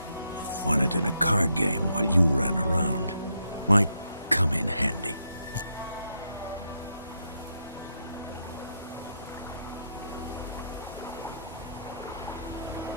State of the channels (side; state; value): both; inverted; correlation -0.79